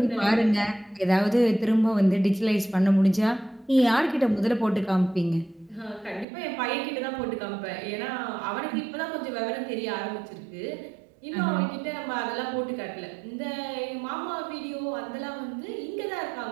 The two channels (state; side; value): drops out; left; at 6.2 s